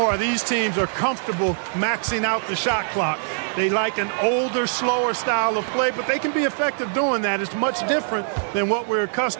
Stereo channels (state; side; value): silent; left; 61 dB below the other